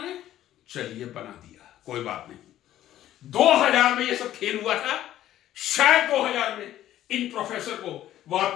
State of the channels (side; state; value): right; quieter; 12.8 dB